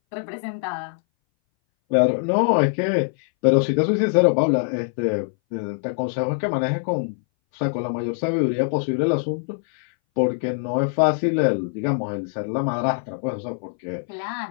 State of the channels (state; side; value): silent; right; 60 dB below the other